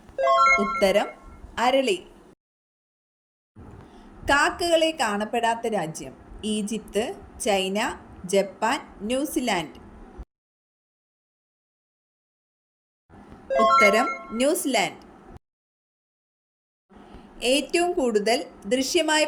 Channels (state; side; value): identical; both; correlation 1.00